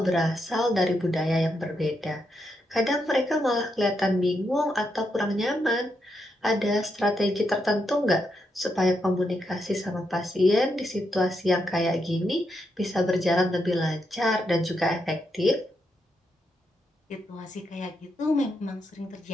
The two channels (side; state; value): both; normal; correlation 0.82